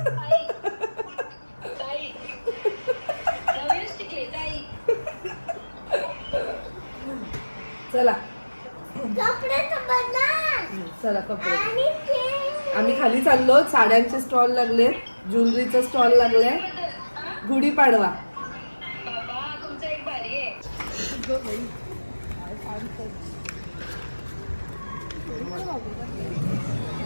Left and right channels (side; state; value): both; inverted; correlation -1.00